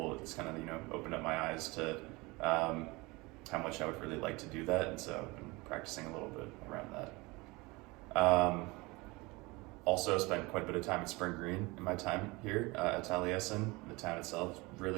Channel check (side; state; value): left; quieter; 24.0 dB